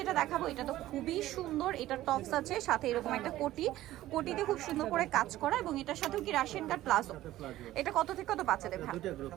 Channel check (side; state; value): left; quieter; 15.0 dB